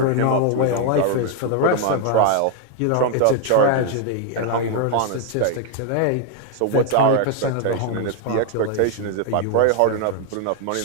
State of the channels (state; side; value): different; both; correlation 0.00